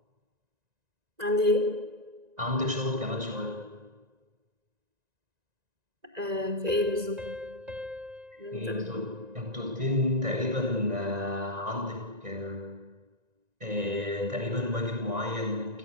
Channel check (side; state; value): left; late; 1.9 ms